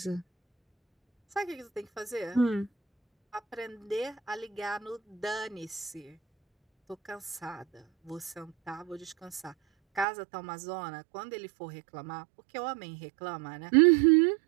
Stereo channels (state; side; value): drops out; left; at 10.1 s